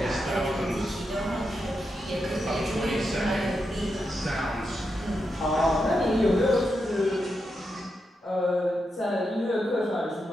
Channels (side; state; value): both; normal; correlation 0.85